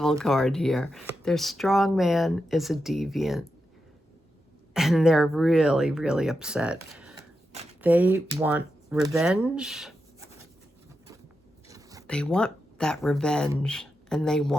card here. Their strong man is a deviant, and they're really, really upset. They want revenge. They want that revenge, and they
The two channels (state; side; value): normal; both; correlation 0.88